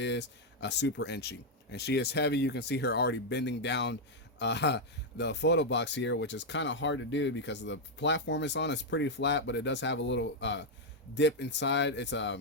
a super inchy, and she is heavy. You can see her already bending down the photo box here, which is kind of hard to do because the platform it's on is pretty flat, but it does have a little dip inside. It's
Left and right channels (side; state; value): both; normal; correlation 0.00